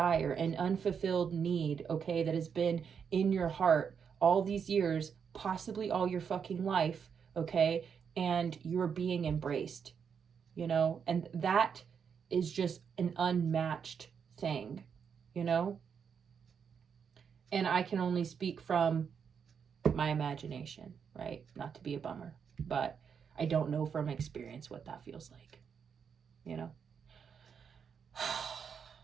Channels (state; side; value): quieter; left; 6.9 dB